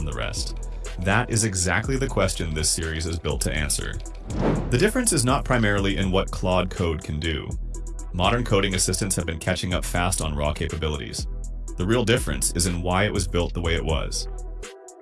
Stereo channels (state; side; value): identical; both; correlation 1.00